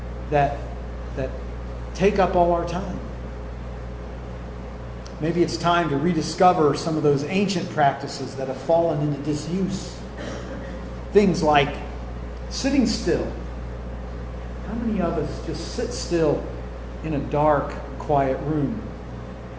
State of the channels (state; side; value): identical; both; correlation 1.00